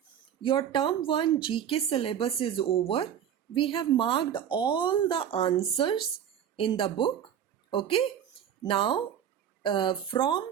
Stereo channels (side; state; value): left; quieter; 9.3 dB